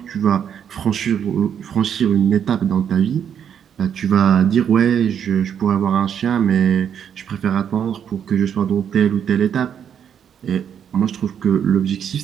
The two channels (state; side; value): quieter; left; 8.5 dB